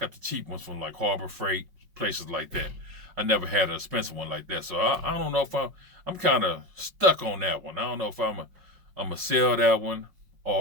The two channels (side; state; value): left; late; 5.3 ms